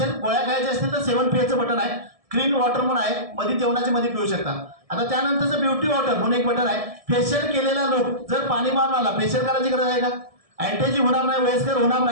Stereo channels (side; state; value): left; late; 1.7 ms